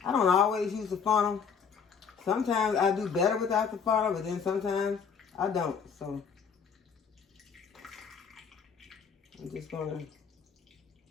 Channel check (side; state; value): right; quieter; 6.4 dB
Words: I don't always use a funnel. Sometimes I do better without the funnel, but then sometimes I don't. So I'm just going to